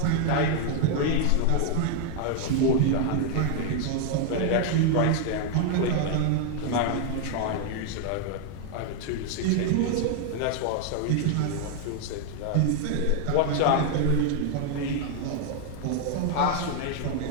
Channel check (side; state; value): both; different; correlation 0.00